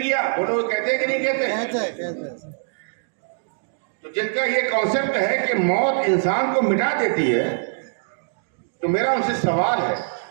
گیا، وہ لوگ کہتے ہیں کہ نہیں کہتے؟ تو جن کا یہ کانسیپٹ ہے کہ موت انسان کو مٹا دیتی ہے، تو میرا ان سے سوال ہے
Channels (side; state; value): left; silent; digital silence